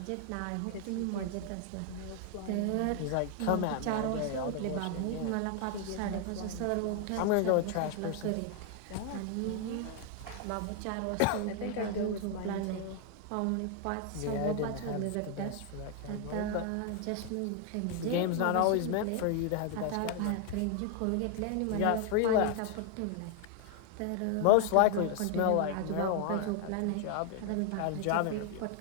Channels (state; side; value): different; both; correlation 0.00